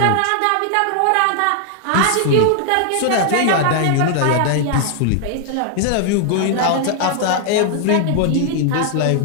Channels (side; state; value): both; different; correlation 0.00